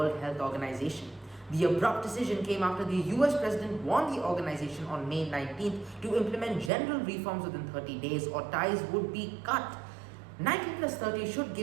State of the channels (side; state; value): left; drops out; at 6.7 s